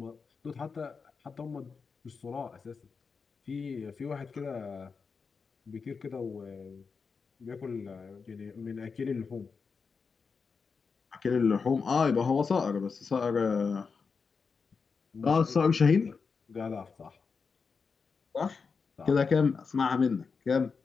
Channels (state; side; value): quieter; right; 5.2 dB